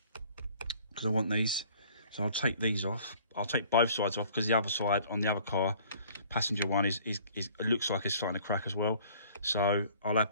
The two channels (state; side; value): inverted; both; correlation -0.54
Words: because I want these. So I'll take these off. I'll take both sides off because the other side on the other car, passenger one, is it looks like it's starting to crack as well. So I'll have